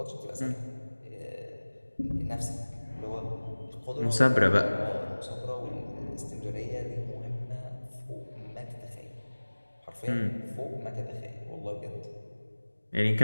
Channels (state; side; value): inverted; both; correlation -1.00